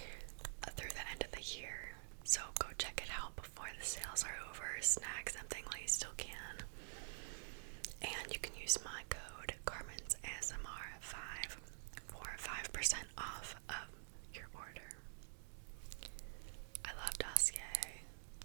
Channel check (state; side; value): silent; left; digital silence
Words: through the end of the year. So go check it out before the sales are over. Snag something while you still can. And you can use my code Carmen's ASMR5 for 5% off of your order. I love Dossier,